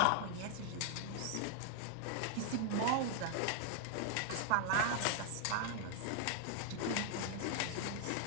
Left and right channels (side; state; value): both; different; correlation 0.00